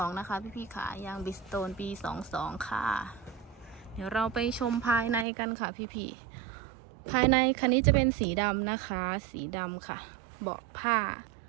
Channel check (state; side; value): drops out; left; at 5.2 s